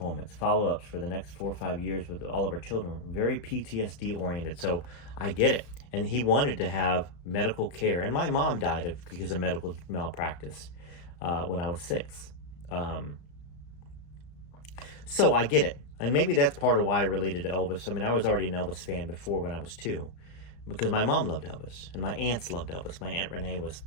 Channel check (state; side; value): late; right; 34 ms